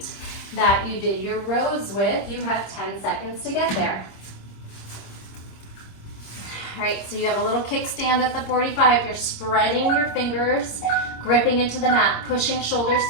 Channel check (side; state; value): right; late; 26 ms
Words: that you did your rows with. You have 10 seconds to get there. All right, so you have a little kickstand at the 45. You're spreading your fingers, gripping into the mat, pushing shoulders